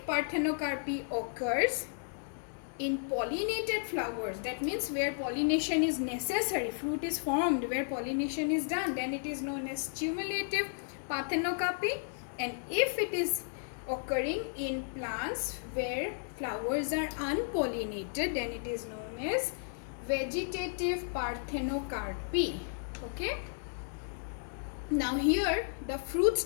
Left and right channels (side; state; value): right; silent; digital silence